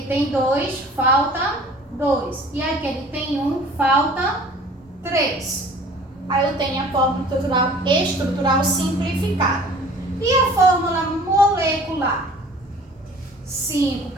tem 2, falta 2. E aqui ele tem 1, falta 3. Aí eu tenho a fórmula estrutural simplificada. E a fórmula molecular? 5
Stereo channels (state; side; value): normal; both; correlation 0.48